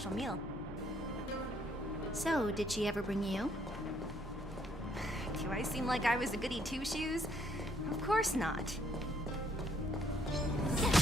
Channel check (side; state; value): both; normal; correlation 0.68